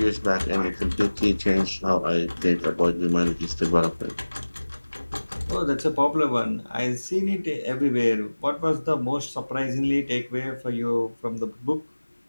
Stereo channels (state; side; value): inverted; both; correlation -1.00